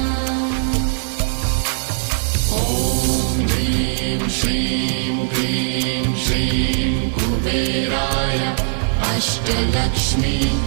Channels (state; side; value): silent; left; digital silence